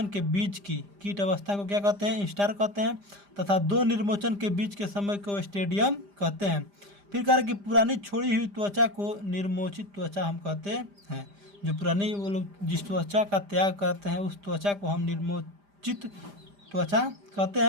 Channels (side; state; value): left; late; 5.0 ms